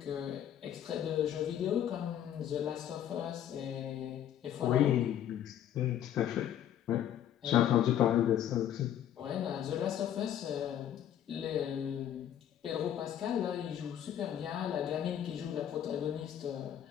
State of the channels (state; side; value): quieter; right; 10.4 dB